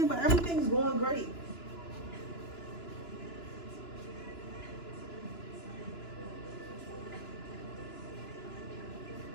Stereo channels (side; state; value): right; late; 2.9 ms